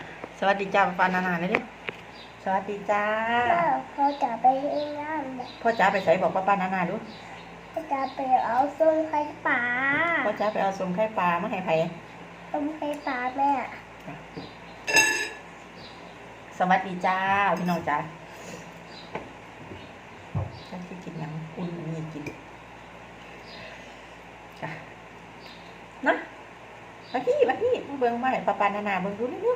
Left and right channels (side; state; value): both; identical; correlation 1.00